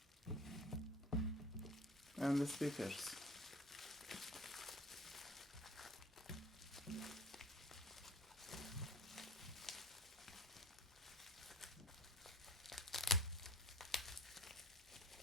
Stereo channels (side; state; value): both; normal; correlation 0.43